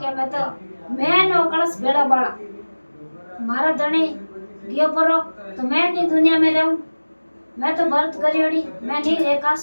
के मैं नो कलश भेड़ा बाड़ा मारा धनी गियो परो तो मैं नहीं दुनिया में रहूं मैं तो व्रत करियोड़ी मैं नहीं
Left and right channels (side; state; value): both; inverted; correlation -1.00